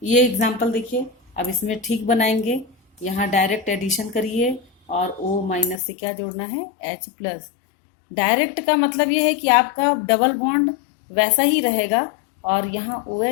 ये एग्जाम्पल देखिए, अब इसमें ठीक बनाएंगे। यहाँ डायरेक्ट एडिशन करिए और O माइनस से क्या जोड़ना है, H प्लस। डायरेक्ट का मतलब ये है कि आपका डबल बॉन्ड वैसा ही रहेगा और यहाँ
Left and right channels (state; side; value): drops out; right; at 5.8 s